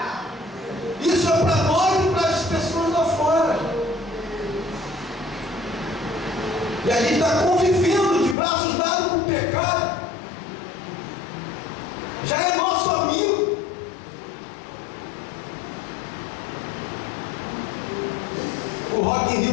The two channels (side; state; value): right; drops out; at 8.3 s